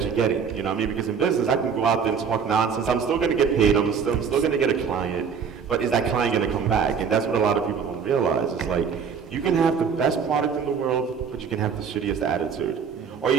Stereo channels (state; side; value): quieter; left; 6.4 dB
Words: you're getting? You know what I mean? Because in business, I can go out there and talk nonsense, I'm still gonna get paid, I'm still gonna get a client, but is that client gonna come back? And that's what a lot of people don't realize. It's like, you can have the best product in the world, but you can have the shittiest attitude. Or